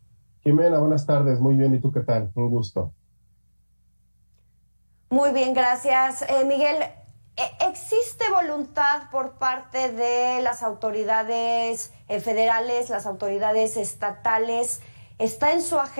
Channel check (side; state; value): both; inverted; correlation -1.00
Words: Jimena, buenas tardes. Muy bien. ¿Y tú qué tal? Un gusto. Muy bien, gracias. Miguel, ¿existe voluntad por parte de las autoridades federales, las autoridades estatales? ¿Está en su